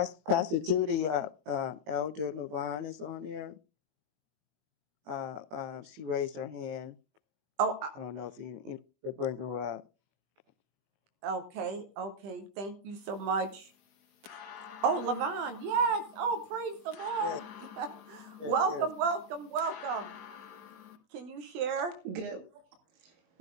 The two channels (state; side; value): late; left; 20 ms